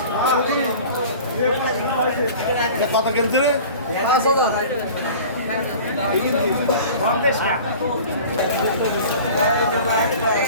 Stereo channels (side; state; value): both; inverted; correlation -0.42